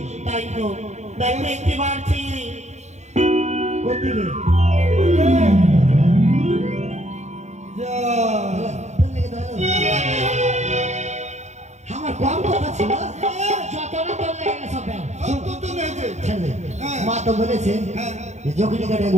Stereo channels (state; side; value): late; left; 0.33 ms